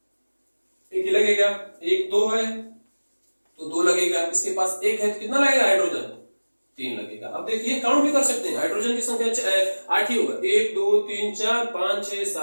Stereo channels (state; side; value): inverted; both; correlation -1.00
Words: एक ही लगेगा, 1 2 है तो 2 लगेगा, इसके पास 1 है तो कितना लगेगा हाइड्रोजन, 3 लगेगा। अब देखिए काउंट भी कर सकते हैं, हाइड्रोजन की संख्या 8 ही होगा, 1 2 3 4 5 6